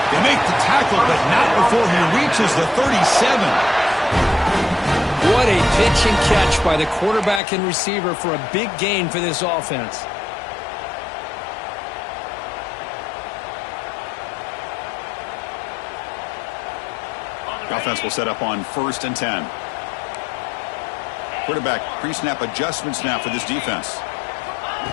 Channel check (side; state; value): right; drops out; at 7.4 s